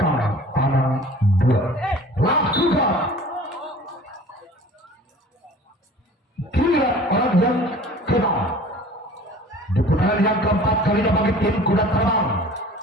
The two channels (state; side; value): normal; both; correlation 0.45